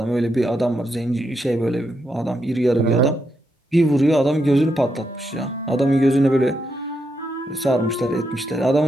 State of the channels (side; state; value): both; normal; correlation 0.82